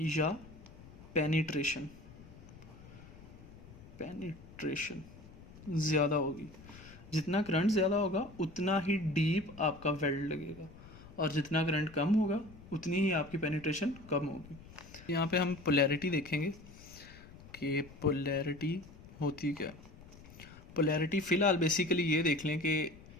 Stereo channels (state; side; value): noise; left; rumble, 19 dB below the sound